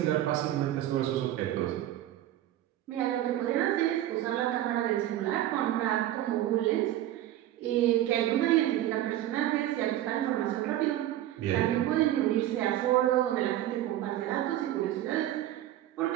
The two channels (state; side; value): quieter; left; 13.3 dB